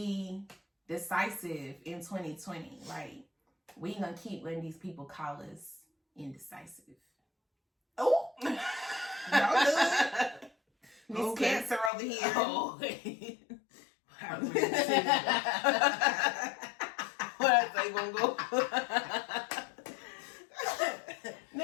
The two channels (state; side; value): drops out; right; at 11.9 s